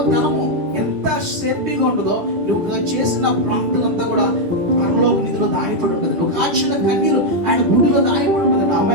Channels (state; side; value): late; left; 10 ms